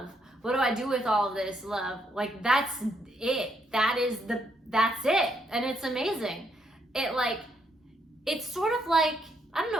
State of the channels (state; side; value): normal; both; correlation 0.75